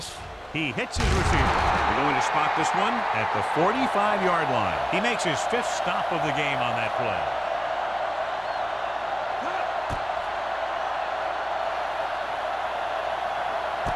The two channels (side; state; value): both; identical; correlation 1.00